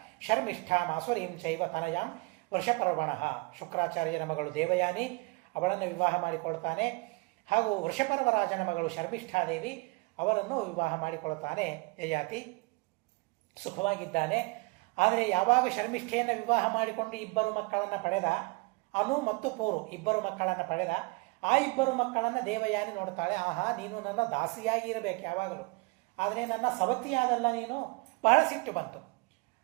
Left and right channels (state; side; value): quieter; left; 27.3 dB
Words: ಶರ್ಮಿಷ್ಠಾಂ ಆಸುರೀಂ ಚೈವ ತನಯಾಂ ವೃಷಪರ್ವಣಃ. ಶುಕ್ರಾಚಾರ್ಯನ ಮಗಳು ದೇವಯಾನಿ, ಅವಳನ್ನು ವಿವಾಹ ಮಾಡಿಕೊಳ್ತಾನೆ. ಹಾಗೂ ವೃಷಪರ್ವರಾಜನ ಮಗಳು ಶರ್ಮಿಷ್ಠಾದೇವಿ, ಅವರನ್ನು ವಿವಾಹ ಮಾಡಿಕೊಳ್ತಾನೆ ಯಯಾತಿ. ಸುಖವಾಗಿದ್ದಾನೆ. ಆದರೆ ಯಾವಾಗ ಶರ್ಮಿಷ್ಠೆಯನ್ನು ವಿವಾಹ ಮಾಡಿಕೊಂಡು 2 ಮಕ್ಕಳನ್ನು ಪಡೆದ, ಅನು ಮತ್ತು ಪೂರು 2 ಮಕ್ಕಳನ್ನು ಪಡೆದ, ಆ 2 ಮಕ್ಕಳನ್ನು ದೇವಯಾನಿ ನೋಡ್ತಾಳೆ. ಆಹಾ, ನೀನು ನನ್ನ ದಾಸಿಯಾಗಿ ಇರಬೇಕು ಯಾವಾಗಲೂ, ಆದರೆ ನನ್ನ ಸವತಿಯಾದಲ್ಲ ನೀನು. ಬಹಳ ಸಿಟ್ಟು ಬಂತು.